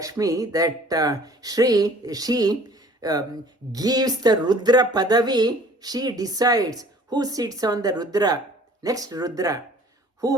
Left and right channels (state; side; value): normal; both; correlation 0.51